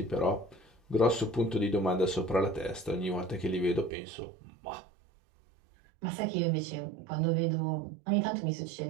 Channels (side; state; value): left; drops out; at 3.9 s